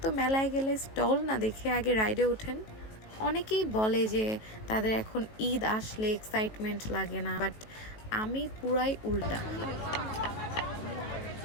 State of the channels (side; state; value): right; late; 18 ms